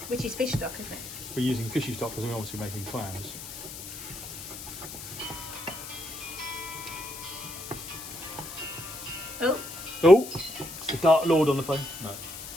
Which is fish stock, isn't it? We're using fishy stock because we're obviously making clams. Oh. Oh, it's the Dark Lord on the phone. No.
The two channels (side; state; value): left; noise; hiss, 11 dB below the sound